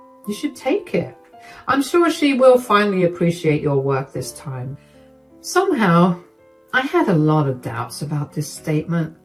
You should take it. I'm sure she will finally appreciate your work this time. Somehow, I had a lot of doubts about this statement.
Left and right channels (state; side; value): identical; both; correlation 1.00